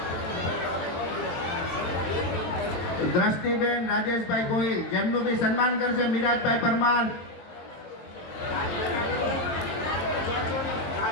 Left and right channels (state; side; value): late; right; 22 ms